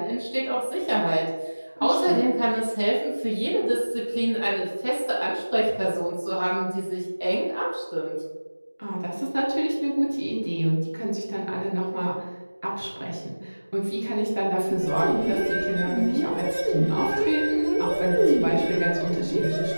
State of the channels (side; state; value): both; inverted; correlation -1.00